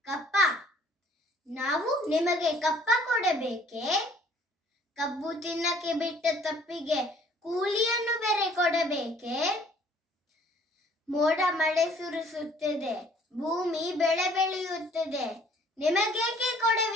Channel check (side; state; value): both; normal; correlation 0.57